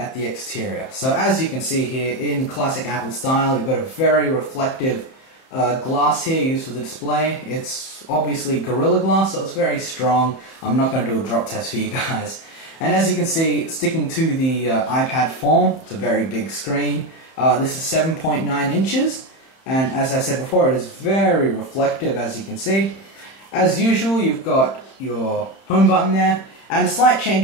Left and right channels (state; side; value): late; right; 31 ms